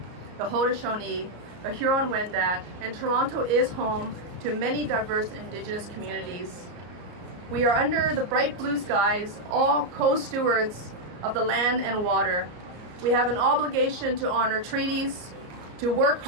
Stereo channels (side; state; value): left; late; 34 ms